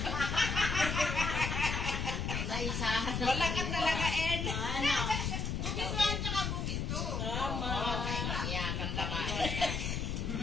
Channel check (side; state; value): left; noise; rumble, 1 dB below the sound